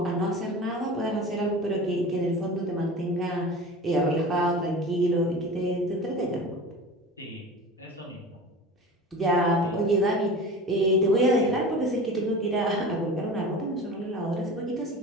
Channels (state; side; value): normal; both; correlation 0.35